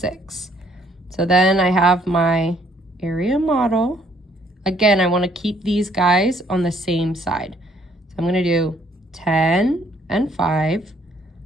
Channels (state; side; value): normal; both; correlation 0.65